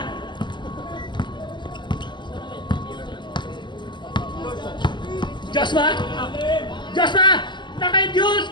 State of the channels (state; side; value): late; right; 0.22 ms